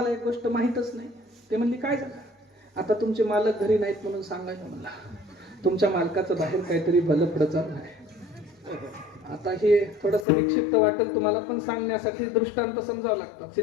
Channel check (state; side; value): drops out; right; at 10.2 s